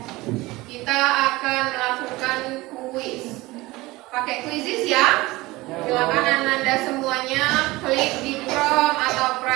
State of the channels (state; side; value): quieter; left; 20.5 dB